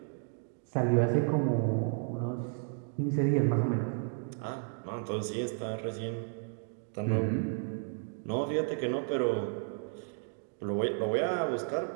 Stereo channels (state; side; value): silent; left; 56 dB below the other